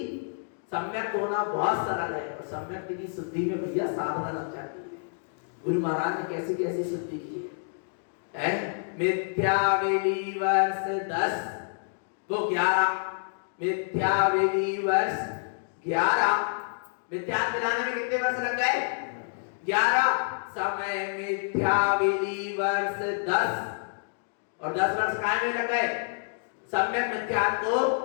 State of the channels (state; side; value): silent; right; digital silence